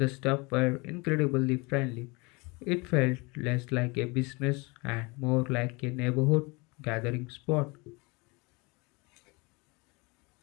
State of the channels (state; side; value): quieter; right; 27.2 dB